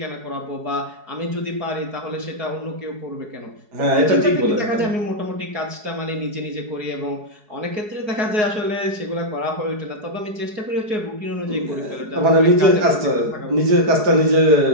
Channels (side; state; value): left; late; 4.7 ms